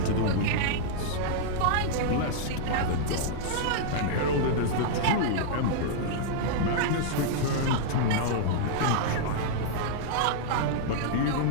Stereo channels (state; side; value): different; both; correlation -0.01